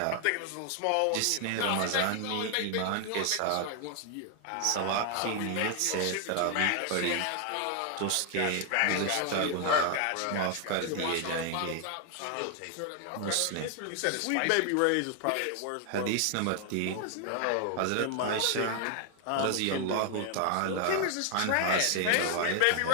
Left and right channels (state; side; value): different; both; correlation 0.00